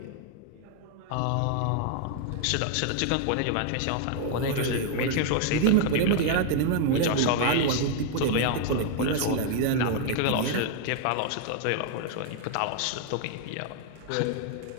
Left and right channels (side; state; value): both; different; correlation 0.00